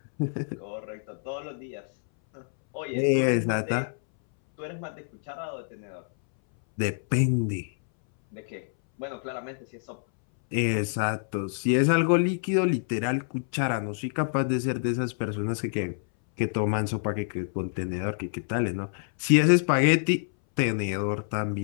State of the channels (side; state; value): right; silent; 60 dB below the other